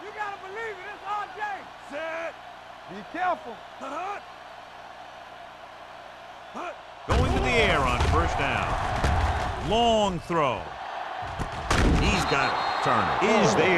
You gotta believe it. It's RJ. Set. Be careful. Going to the air on first down. Long throw. He's got it. Turner is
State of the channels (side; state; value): both; identical; correlation 1.00